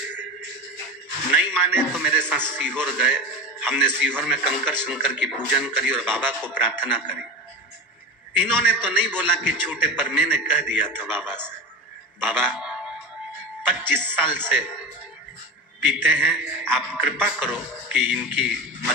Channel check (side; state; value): both; normal; correlation 0.25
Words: नहीं माने तो मेरे साथ सीहोर गए। हमने सीहोर में कंकर शंकर की पूजन करी और बाबा को प्रार्थना करी। इन्होंने तो नहीं बोला कि छूटे, पर मैंने कह दिया था बाबा से, बाबा 25 साल से पीते हैं, आप कृपा करो कि इनकी